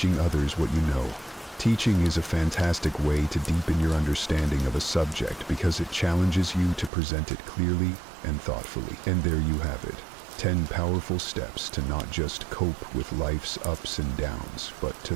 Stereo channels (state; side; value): drops out; left; at 6.9 s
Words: others what you know. Teaching is a fantastic way to deepen your understanding of a subject because it challenges you to present it clearly and thoughtfully. And there you have it. 10 powerful steps to not just cope with life's ups and downs, but to